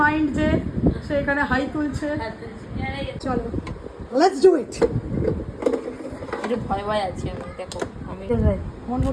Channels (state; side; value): identical; both; correlation 1.00